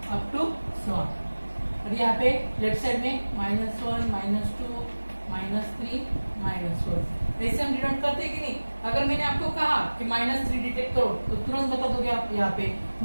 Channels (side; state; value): both; inverted; correlation -1.00